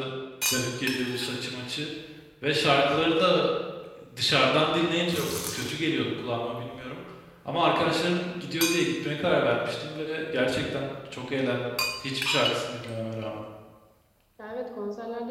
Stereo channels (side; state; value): both; identical; correlation 1.00